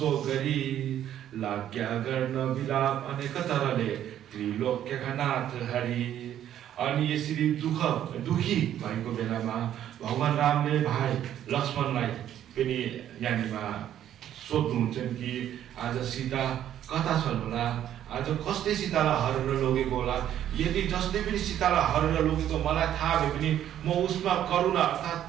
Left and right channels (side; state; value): left; quieter; 11.0 dB